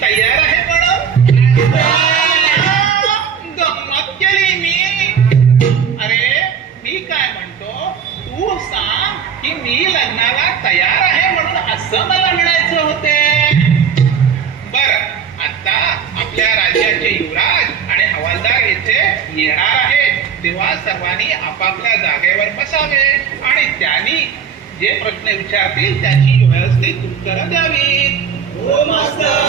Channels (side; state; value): left; quieter; 7.3 dB